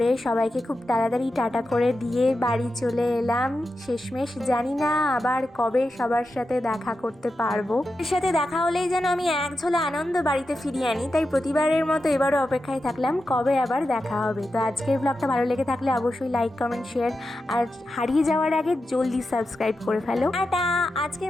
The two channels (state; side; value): normal; both; correlation 0.90